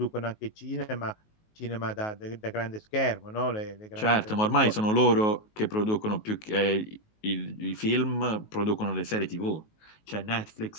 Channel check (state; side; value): late; right; 19 ms